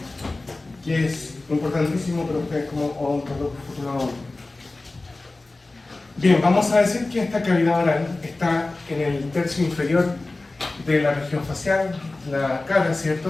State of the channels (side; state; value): right; quieter; 3.1 dB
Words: que es importantísimo para ustedes como odontólogo futuro. Bien, vamos a decir que esta cavidad oral está en el tercio inferior de la región facial, la cara,